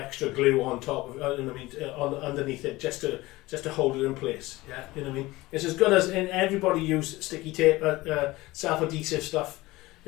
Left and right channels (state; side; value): quieter; right; 19.7 dB